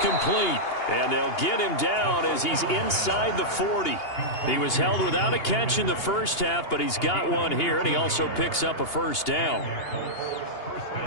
And they'll get him down as he's inside the 40. He was held without a catch in the first half, but he's got one here, and he also picks up a first down.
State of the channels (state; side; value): late; right; 2.8 ms